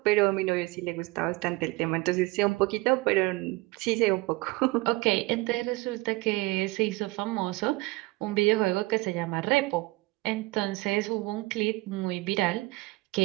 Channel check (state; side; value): quieter; left; 22.1 dB